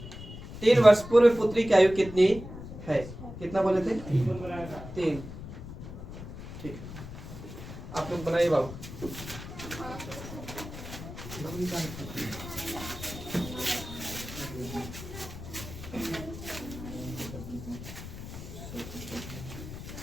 3 वर्ष पूर्व पुत्री की आयु कितनी है, कितना बोले थे, 3। ठीक, आप लोग बनाइए बाबू।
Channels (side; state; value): left; noise; rumble, 11 dB below the sound